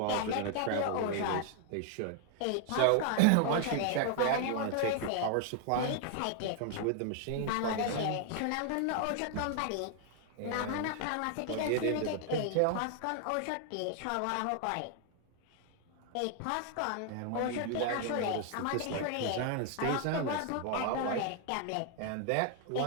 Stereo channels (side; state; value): both; different; correlation 0.00